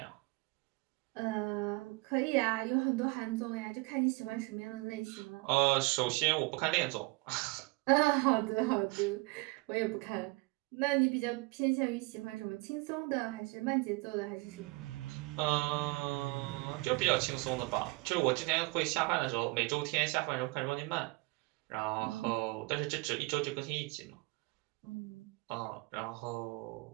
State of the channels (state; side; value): quieter; left; 26.2 dB